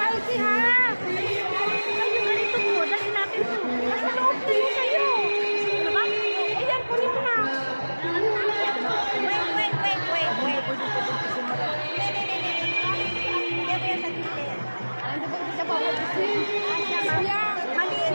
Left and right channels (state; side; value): inverted; both; correlation -1.00